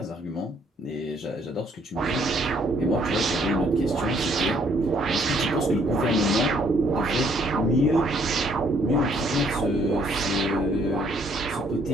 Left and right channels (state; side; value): normal; both; correlation 0.66